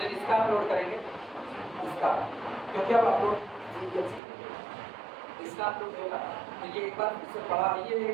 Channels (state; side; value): drops out; left; at 4.2 s